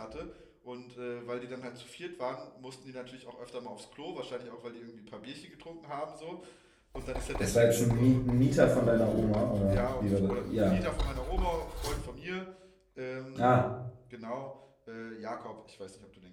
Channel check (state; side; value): identical; both; correlation 1.00